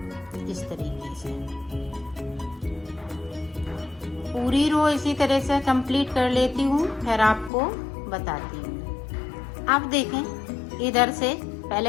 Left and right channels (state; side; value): drops out; right; at 7.5 s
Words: इस तरीके से। पूरी रो इसी तरह से कंप्लीट कर लेती हूँ, फिर आपको बताती हूँ। अब देखें इधर से